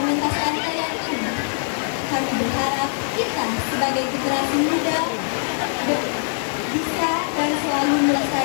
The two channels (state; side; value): silent; right; digital silence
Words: tarian ini, kami berharap kita sebagai generasi muda bisa dan selalu